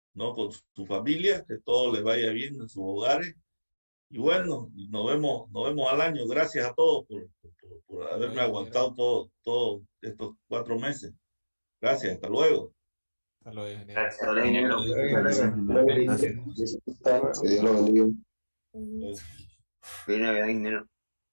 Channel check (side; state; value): both; inverted; correlation -1.00